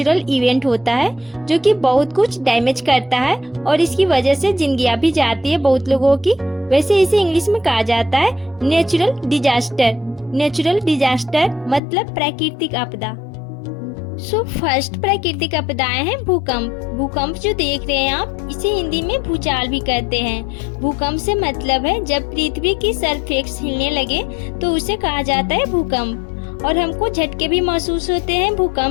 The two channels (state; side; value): drops out; right; at 11.8 s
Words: इवेंट होता है जो कि बहुत कुछ डैमेज करता है और इसकी वजह से जिंदगियां भी जाती है बहुत लोगों की। वैसे इसे इंग्लिश में कहा जाता है नेचुरल डिजास्टर। नेचुरल डिजास्टर मतलब प्राकृतिक आपदा। सो फर्स्ट प्राकृतिक आपदाएं हैं भूकंप। भूकंप जो देख रहे हैं आप, इसे हिंदी में भूचाल भी कहते हैं। भूकंप से मतलब है जब पृथ्वी की सरफेस हिलने लगे तो उसे कहा जाता है भूकंप। और हमको झटके भी महसूस होते हैं